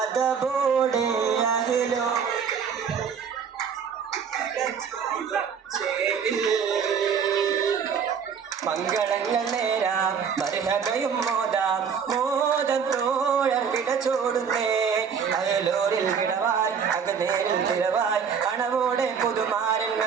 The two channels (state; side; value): quieter; left; 6.8 dB